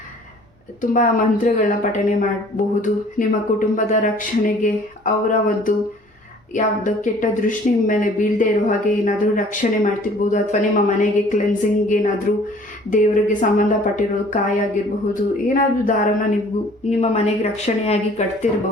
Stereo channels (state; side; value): normal; both; correlation 0.53